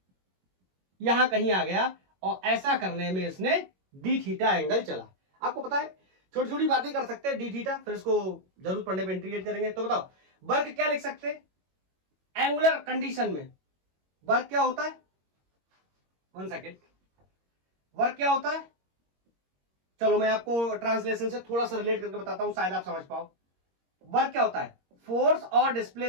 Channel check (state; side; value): late; left; 22 ms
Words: यहां कहीं आ गया, और ऐसा करने में इसने डी थीटा एंगल चला। आपको पता है छोटी छोटी बातें कर सकते हैं डी थीटा, फिर इसको जरूरत पड़ने पे इंटीग्रेट करेंगे। तो बताओ वर्क क्या लिख सकते हैं एंगुलर कंडीशन में, वर्क क्या होता है, 1 सेकेंड, वर्क क्या होता है। चलो मैं आपको ट्रांसलेशन से थोड़ा सा रिलेट करके बताता हूं, शायद आप समझ पाओ। वर्क क्या होता है, फोर्स और